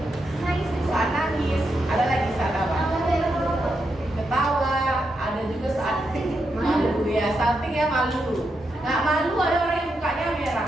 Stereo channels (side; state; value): both; normal; correlation 0.84